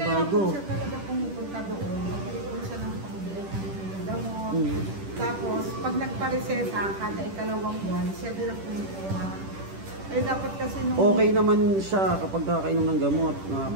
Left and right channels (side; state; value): left; late; 10 ms